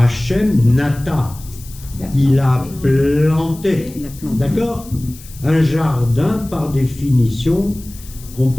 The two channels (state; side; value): noise; left; hiss, 19 dB below the sound